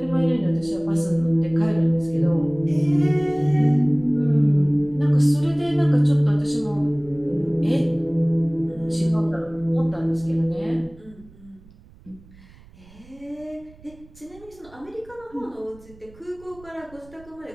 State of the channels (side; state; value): right; noise; rumble, 24 dB below the sound